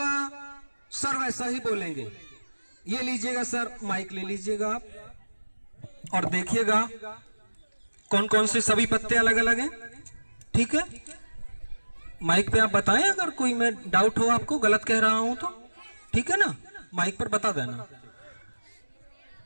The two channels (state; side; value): inverted; both; correlation -1.00